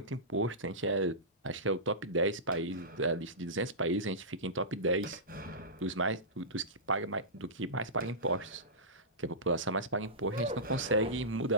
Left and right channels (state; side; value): normal; both; correlation -0.18